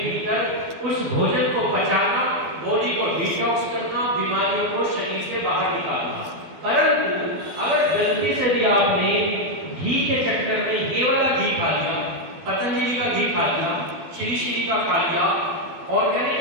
भीतर उस भोजन को पचाना, बॉडी को डिटॉक्स करना, बीमारियों को शरीर से बाहर निकालना। परंतु अगर गलती से भी आपने घी के चक्कर में ये वाला घी खा लिया, पतंजलि का घी खा लिया, श्री श्री का खा लिया,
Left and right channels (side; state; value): left; late; 12 ms